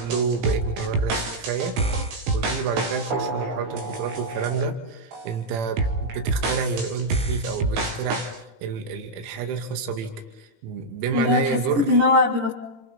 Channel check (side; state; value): left; late; 18 ms